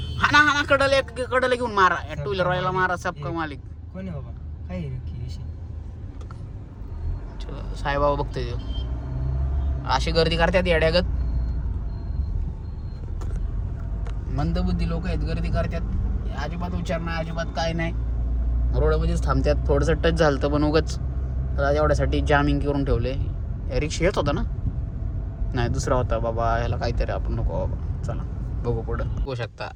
हाना हाना कडला घेऊन मारा. टू व्हीलर वाल्याला मारा. सबका मालिक. कोण आहे बाबा काय आहे नक्की विषय. चलो साईबाबा बघतोय तो. अशी गर्दी करतात येड्यागत. मंदबुद्धी लोक आहेत. गर्दी करतात. अजिबात विचार नाही अजिबात काय नाही. रोडमध्येच थांबतात. थोडंसं टच झालं पण उगाच एवढ्यासाठी जामिंग करून ठेवले. रिक्षा येत होता ना. नाही दुसरा होता बाबा. ह्याला काहीतरी आपण नको बाबा. चला बघू पुढं. बघू शकता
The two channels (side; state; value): both; identical; correlation 1.00